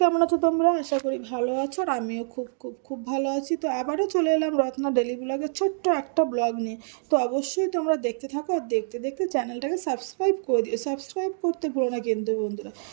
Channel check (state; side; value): silent; left; digital silence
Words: আছো তোমরা? আশা করি ভালো আছো। আর আমিও খুব খুব খুব ভালো আছি। তো আবারও চলে এলাম রত্না ডেলি ব্লগের ছোট্ট একটা ব্লগ নিয়ে। তো অবশ্যই তোমরা দেখতে থাকো, আর দেখতে দেখতে চ্যানেলটাকে সাবস্ক্রাইব করে দিও। সাবস্ক্রাইব করতে ভুলো না কিন্তু বন্ধুরা।